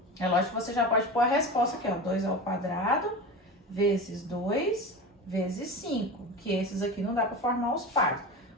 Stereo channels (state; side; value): normal; both; correlation 0.28